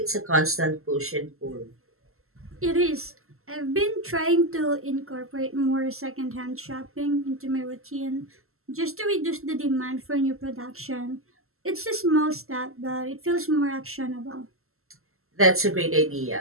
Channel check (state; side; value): late; left; 0.62 ms